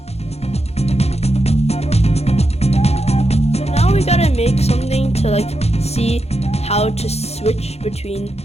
Make something to like see how to switch between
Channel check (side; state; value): right; late; 0.31 ms